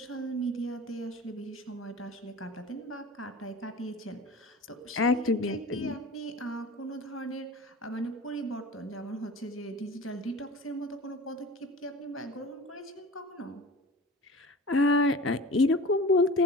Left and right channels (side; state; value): both; normal; correlation 0.38